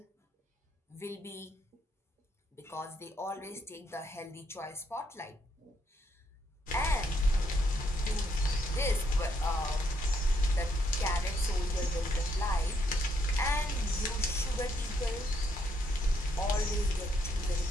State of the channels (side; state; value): both; normal; correlation 0.75